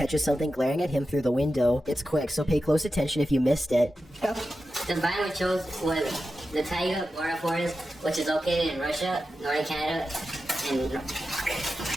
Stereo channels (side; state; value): both; normal; correlation 0.91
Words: something glaring at him through the window. It's quick, so pay close attention if you missed it. The biome we chose was the taiga forest, which is located in Russia, northern Canada, and...